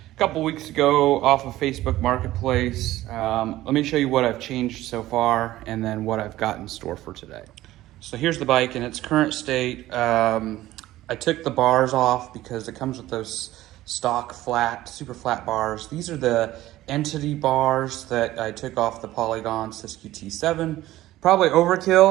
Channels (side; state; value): left; quieter; 15.7 dB